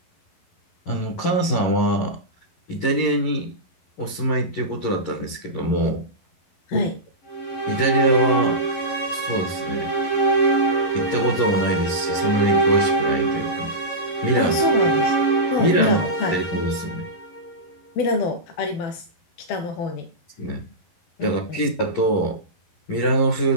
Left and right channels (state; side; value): late; right; 11 ms